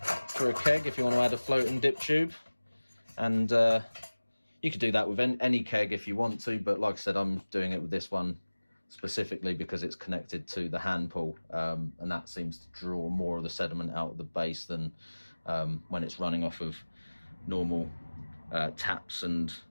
for a keg if you want to add a floating dip tube. And you could do that with any keg if you want to, but like I said, I'm doing it with this one specifically because it's connected to the hand pull, and that seems to draw more of the sediment out of the base than when it's running off of normal taps and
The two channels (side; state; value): both; inverted; correlation -1.00